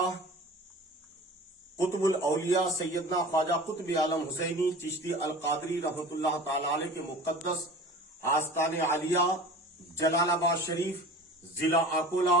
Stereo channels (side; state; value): both; normal; correlation 0.39